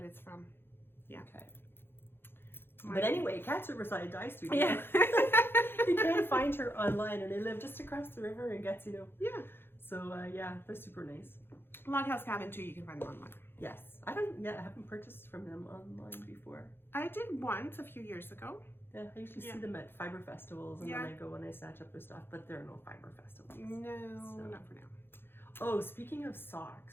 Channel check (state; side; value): late; right; 0.11 ms